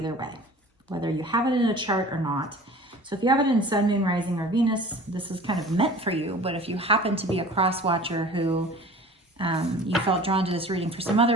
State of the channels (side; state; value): both; normal; correlation 0.43